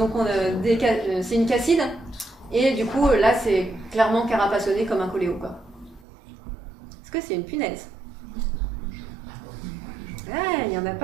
c'est une casside. Et du coup, là, c'est clairement carapassonné comme un coléo, quoi. Est-ce que c'est une punaise? Ah, il n'y en a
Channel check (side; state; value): left; drops out; at 6.1 s